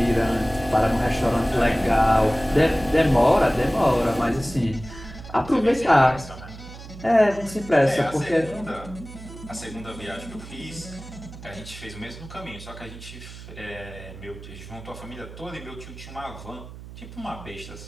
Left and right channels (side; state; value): right; noise; hum, 15 dB below the sound